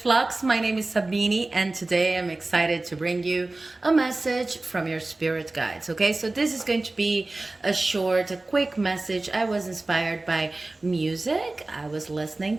My name is Sabine and today I'm excited to bring you a message from your spirit guides. Okay, so this is going to be a quick message. I was inspired by music. I was listening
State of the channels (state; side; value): quieter; left; 3.0 dB